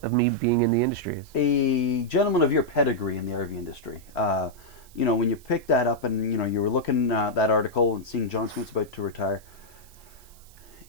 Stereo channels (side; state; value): right; noise; hiss, 25 dB below the sound